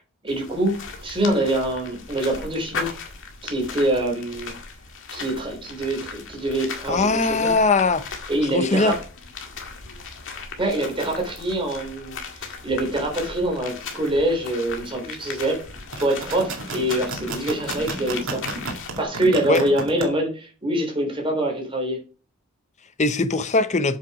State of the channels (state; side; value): normal; both; correlation 0.35